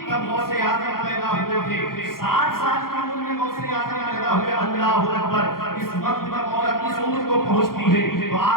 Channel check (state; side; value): late; right; 0.92 ms